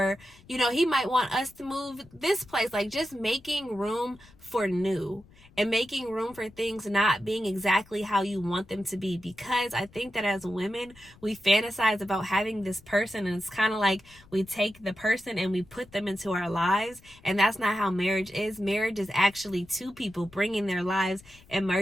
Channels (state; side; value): noise; left; rumble, 25 dB below the sound